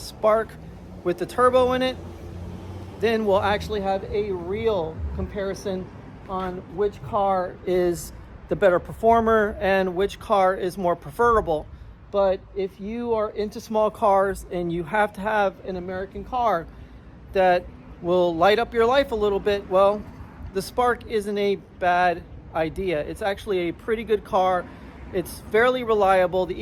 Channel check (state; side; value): identical; both; correlation 1.00